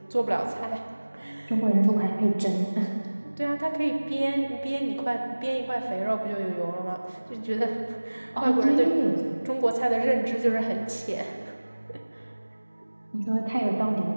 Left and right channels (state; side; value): inverted; both; correlation -1.00